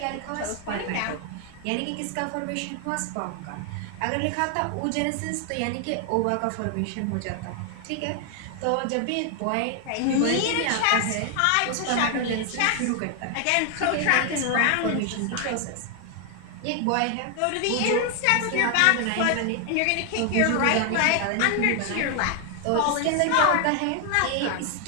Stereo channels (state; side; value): different; both; correlation 0.00